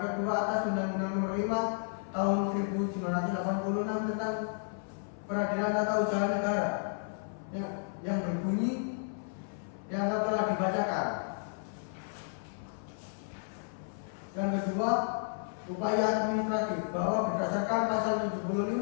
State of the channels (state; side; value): silent; right; 56 dB below the other